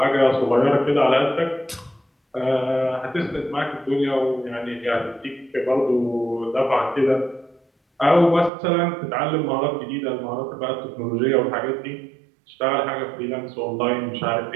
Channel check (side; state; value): left; drops out; at 8.5 s